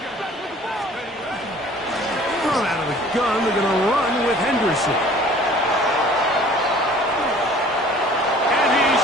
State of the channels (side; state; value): both; normal; correlation 0.50